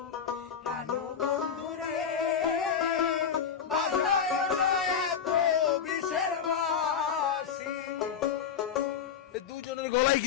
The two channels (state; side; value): quieter; right; 7.3 dB